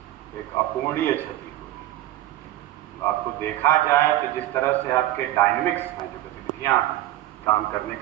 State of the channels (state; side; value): quieter; left; 14.9 dB